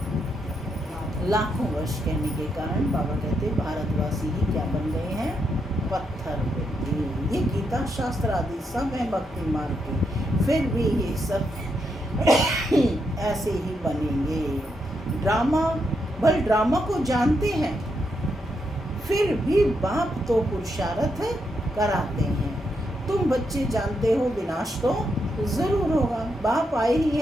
लाखों वर्ष कहने के कारण बाबा कहते भारतवासी ही क्या बन गए हैं? पत्थर बुद्धि। ये गीता शास्त्र आदि सब है भक्ति मार्ग के, फिर भी ये सब ऐसे ही बनेंगे। ड्रामा को जानते हैं, फिर भी बाप तो पुरुषार्थ कराते हैं। तुम बच्चे जानते हो विनाश तो जरूर होगा। बाप आए ही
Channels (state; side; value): normal; both; correlation 0.81